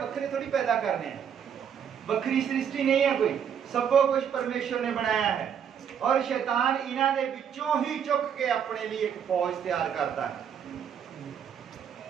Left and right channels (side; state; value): left; quieter; 8.1 dB